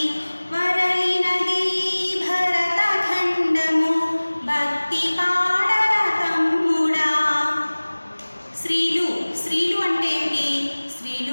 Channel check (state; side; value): inverted; both; correlation -1.00